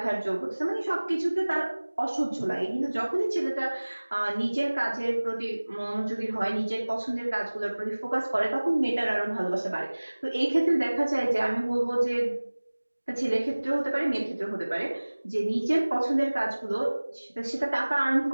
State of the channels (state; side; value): inverted; both; correlation -1.00